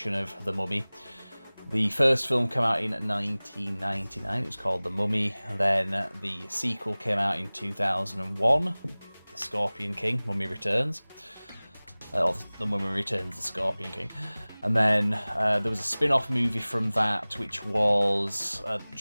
of The Mummy. The first film came out in 1999, it was called The Mummy. Then the sequel came out in 2001, The Scorpion King, Mummy Returns. Or The Mummy Returns, The Scorpion King. And then there was a spin-off movie from that, which was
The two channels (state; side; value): inverted; both; correlation -1.00